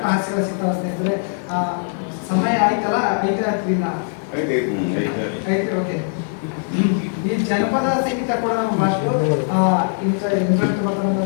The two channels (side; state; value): right; silent; digital silence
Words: ಹಾಸ್ಯಗಳ ಸಿಗ್ತಾವ ಸ್ನೇಹಿತರೆ. ಸಮಯ ಆಯ್ತಲ್ಲ, ಐತೆ. ಓಕೆ, ಈ ಜನಪದ ಸಂಗೀತ ಕೂಡ ನಮ್ಮ ಭಾಷೆ ಇಂಟ್ರೆಸ್ಟ್